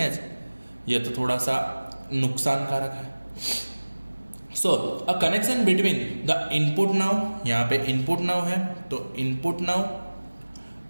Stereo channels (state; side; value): inverted; both; correlation -1.00